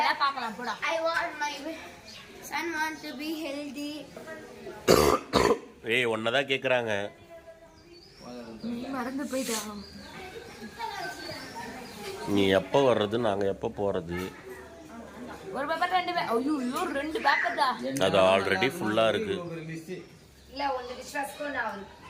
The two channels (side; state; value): both; identical; correlation 1.00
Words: ஒன்னதான் கேக்குறாங்க. மறந்து போயிட்டா. நீ எப்ப வர்றது நாங்க எப்ப போறது? ஒரு பேப்பர் ரெண்டு பேப்பர். ஐயோ ரெண்டு பேப்பர் தான். அது ஆல்ரெடி ஃபுல்லா இருக்கு. இல்ல ஒன்னு விஸ்வாஸ் கூட ஆவல.